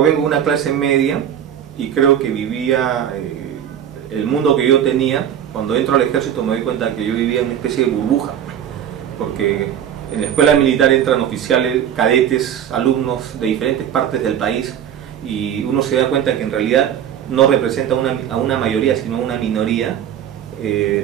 de una clase media y creo que vivía el mundo que yo tenía. Cuando entro al ejército me doy cuenta que yo vivía en una especie de burbuja, porque en la escuela militar entran oficiales, cadetes, alumnos de diferentes partes del país y uno se da cuenta que en realidad no representa a una mayoría, sino a una minoría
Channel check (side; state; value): left; quieter; 9.6 dB